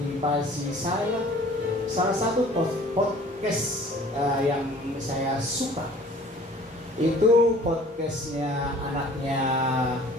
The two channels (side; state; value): both; normal; correlation 0.50